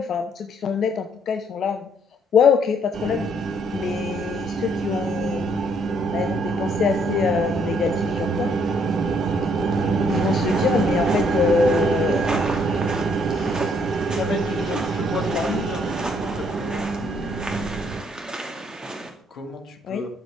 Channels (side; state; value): both; normal; correlation 0.67